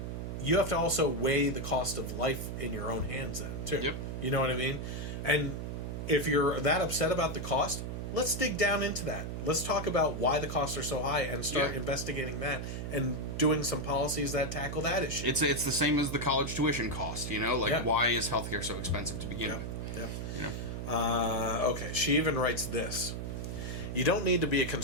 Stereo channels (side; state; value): right; noise; hum, 5 dB below the sound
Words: you have to also weigh the cost of life in your own hands then, too. You know what I mean? And if you're that upset about the cost, let's dig down into that. Let's talk about why the costs are so high and start investigating that and doing some policies that tackle that issue. It's the same as the college tuition cost, why is healthcare so expensive to begin with? Okay, she even writes this. You don't need to be a